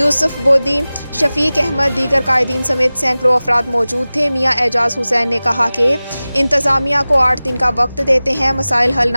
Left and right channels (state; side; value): inverted; both; correlation -0.98